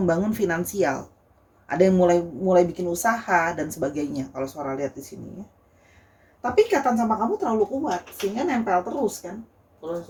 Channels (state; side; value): identical; both; correlation 1.00